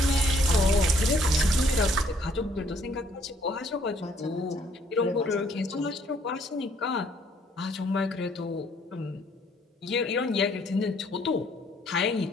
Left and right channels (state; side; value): normal; both; correlation 0.64